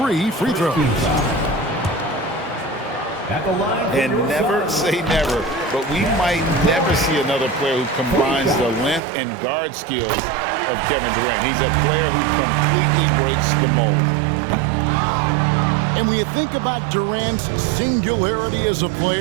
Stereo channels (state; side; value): drops out; left; at 9.0 s